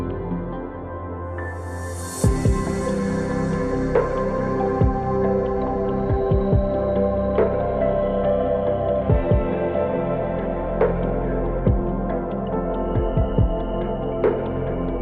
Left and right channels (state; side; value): identical; both; correlation 1.00